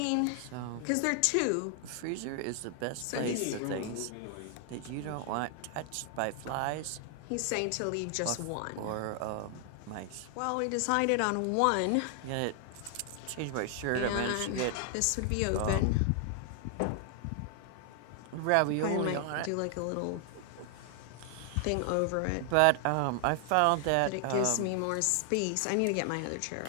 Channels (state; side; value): different; both; correlation 0.00